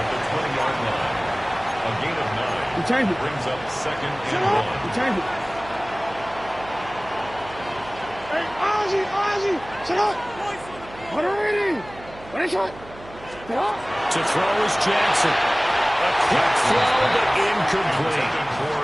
the 20-yard line. A gain of 9 brings up second and 1. Hey, Ozzy, shut up. To throw is Jackson. A quick throw, but incomplete.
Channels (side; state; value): right; noise; hum, 18 dB below the sound